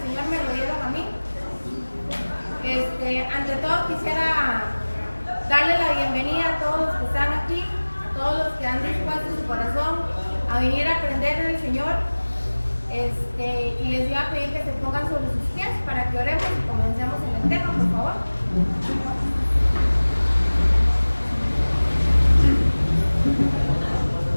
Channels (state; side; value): inverted; both; correlation -1.00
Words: me lo dieron a mí. Ante todo quisiera darle la bienvenida a todos los que están aquí, a todos los que han dispuesto su corazón a venir a aprender del Señor. Y les iba a pedir que se pongan sobre sus pies para que oremos y comencemos en el tema, por favor.